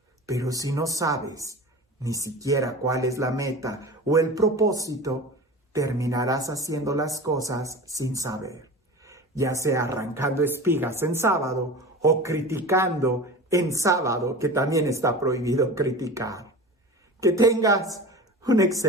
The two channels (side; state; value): both; normal; correlation 0.34